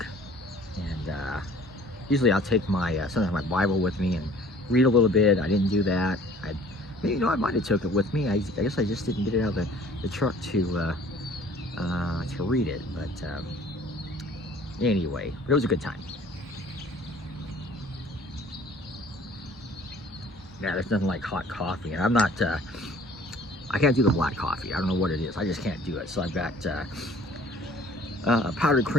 And usually I'll take my sometimes my Bible with me and read a little bit. I didn't do that. I might have took it with me. I guess I just didn't get it out of the truck to read it. But anyway, it was a good time. Yeah, there's nothing like hot coffee, and I'm not, I can't do the black coffee. I don't know what it is. I just can't do it. So I've got powdered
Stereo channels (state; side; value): normal; both; correlation 0.51